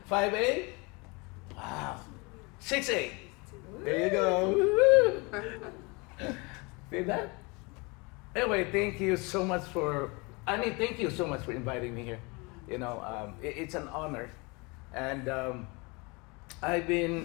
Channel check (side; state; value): right; quieter; 28.1 dB